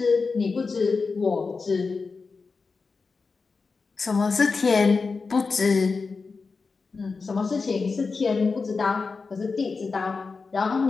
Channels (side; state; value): right; quieter; 4.5 dB